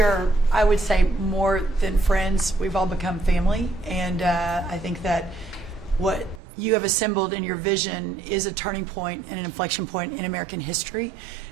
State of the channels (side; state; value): left; drops out; at 6.4 s